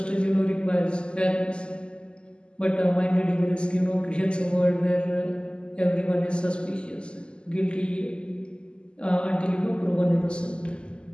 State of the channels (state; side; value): late; right; 0.050 ms